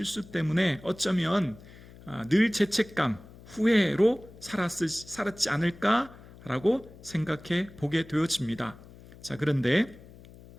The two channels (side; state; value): left; noise; hum, 20 dB below the sound